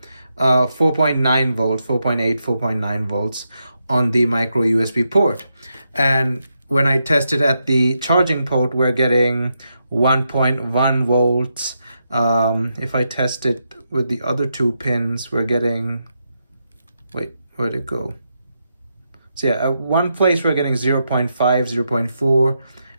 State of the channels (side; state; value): both; inverted; correlation -0.84